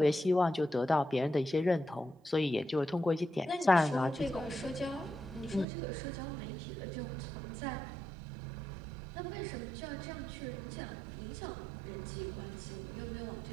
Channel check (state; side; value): drops out; left; at 5.7 s